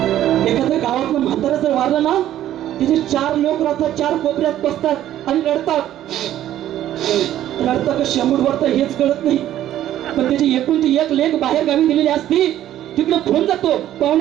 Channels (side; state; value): left; quieter; 12.4 dB